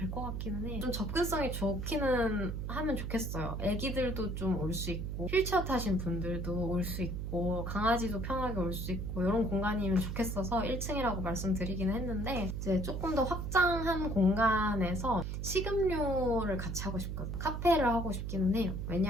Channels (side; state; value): right; noise; hum, 4 dB below the sound